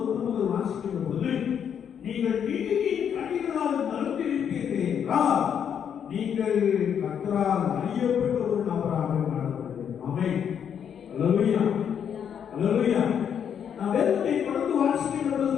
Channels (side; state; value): right; quieter; 8.2 dB